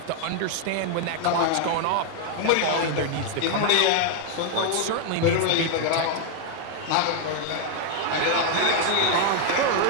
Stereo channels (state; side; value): different; both; correlation 0.00